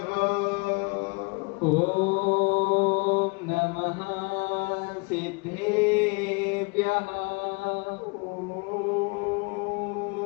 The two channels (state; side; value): quieter; right; 31.0 dB